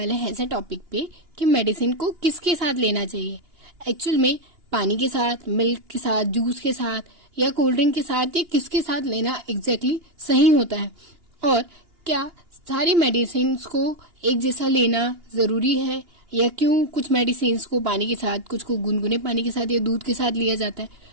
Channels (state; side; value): late; left; 2.9 ms